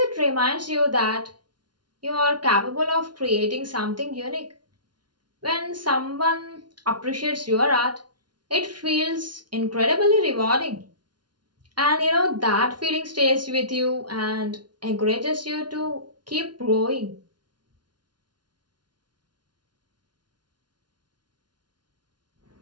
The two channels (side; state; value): left; late; 0.70 ms